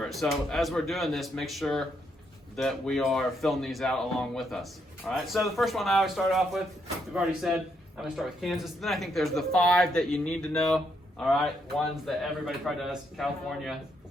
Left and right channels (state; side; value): normal; both; correlation 0.76